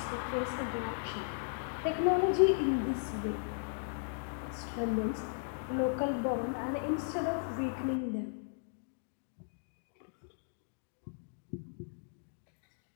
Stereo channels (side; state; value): right; silent; digital silence